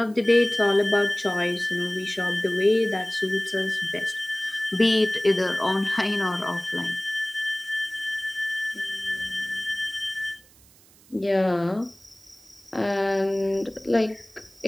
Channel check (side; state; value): right; noise; hiss, 27 dB below the sound